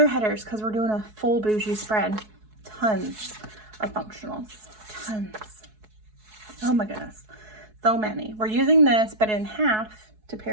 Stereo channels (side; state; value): left; late; 4.7 ms